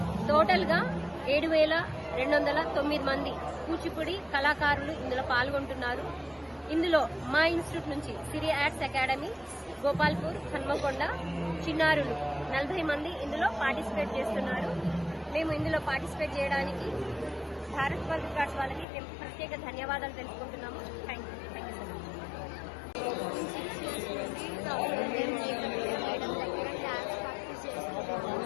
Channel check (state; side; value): drops out; right; at 18.9 s